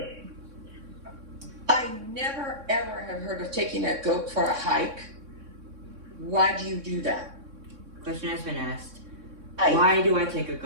I never ever have heard of taking a goat for a hike. Why do you do that? Question has been asked, Hike. why do I take a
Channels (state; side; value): late; left; 3.6 ms